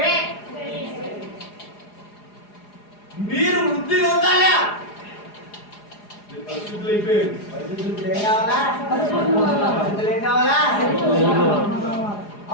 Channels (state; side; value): late; right; 4.8 ms